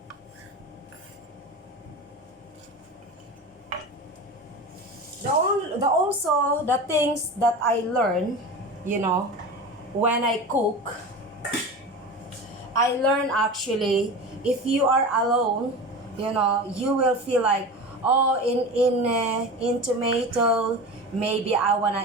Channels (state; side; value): normal; both; correlation 0.30